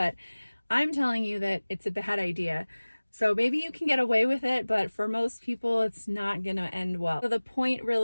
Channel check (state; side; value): inverted; both; correlation -1.00